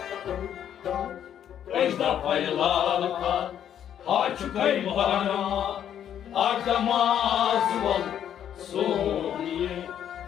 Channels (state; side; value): quieter; right; 9.8 dB